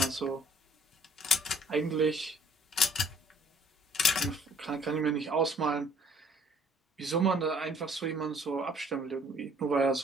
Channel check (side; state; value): both; normal; correlation 0.59